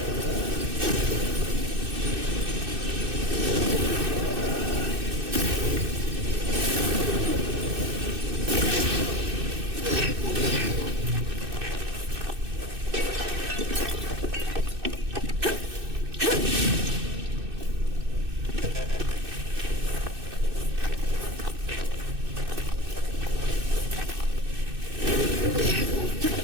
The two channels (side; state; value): left; late; 2.6 ms